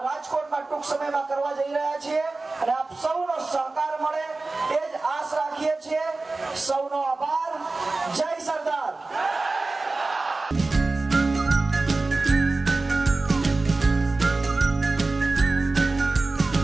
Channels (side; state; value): left; quieter; 3.4 dB